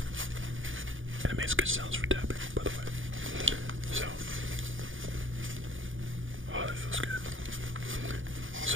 And it makes good sounds for tapping, by the way. So, oh, that feels good.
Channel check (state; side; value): late; left; 0.58 ms